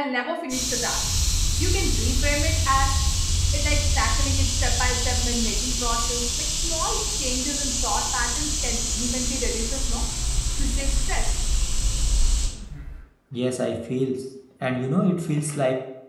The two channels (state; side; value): identical; both; correlation 1.00